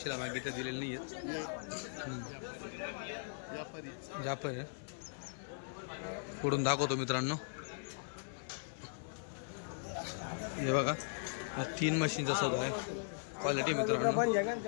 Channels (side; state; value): right; silent; 52 dB below the other